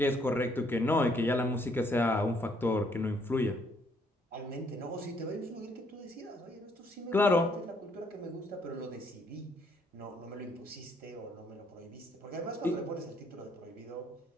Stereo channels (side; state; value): both; normal; correlation 0.68